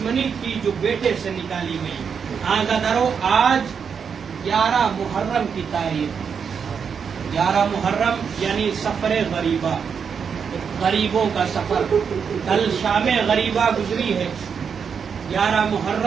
تھی جو بیٹے سے نکالی گئی. آزادارو, آج 11 محرم کی تاریخ, 11 محرم یعنی سفر غریبہ, غریبوں کا سفر. کل شام غریبہ گزری ہے, 11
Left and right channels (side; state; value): left; quieter; 6.6 dB